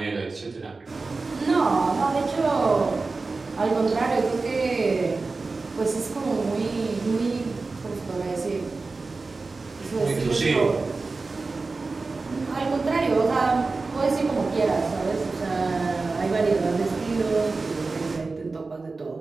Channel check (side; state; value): left; quieter; 3.8 dB